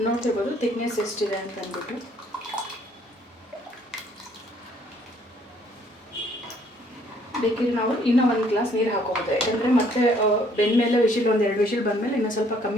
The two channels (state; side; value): normal; both; correlation 0.63